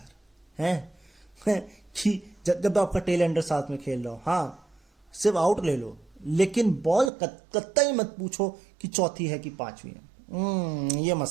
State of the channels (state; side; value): drops out; left; at 7.1 s